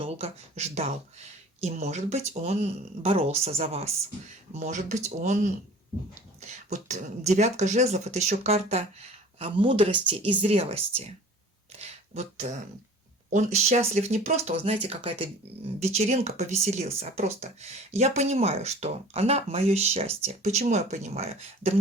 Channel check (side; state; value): both; normal; correlation 0.45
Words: ждал. И, может быть, он боролся за вас. Может быть, он... Вот 9 жезлов – это еще карта мудрости и зрелости. Вот Он счастлив не просто, вот знаете, какая-то вечеринка, повеселился, а просто я понимаю, что она мое счастье. Почему я понимаю? Да